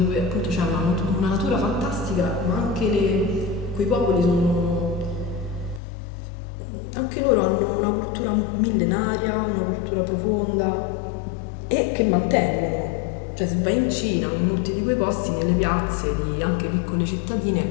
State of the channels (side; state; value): right; drops out; at 5.8 s